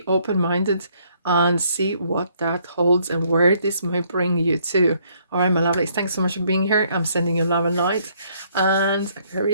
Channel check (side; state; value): both; inverted; correlation -0.67